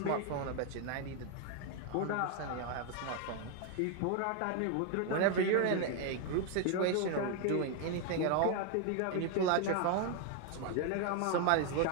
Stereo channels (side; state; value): both; different; correlation 0.01